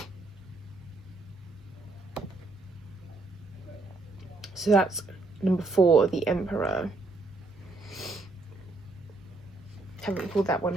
So that's number 4, the Emperor. Haven't pulled that one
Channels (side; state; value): left; quieter; 3.3 dB